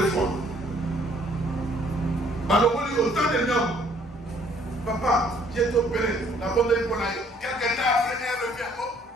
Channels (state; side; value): normal; both; correlation 0.62